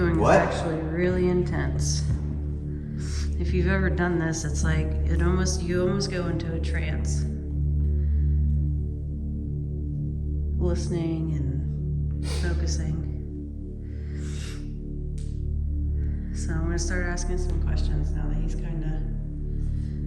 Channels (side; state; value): both; identical; correlation 1.00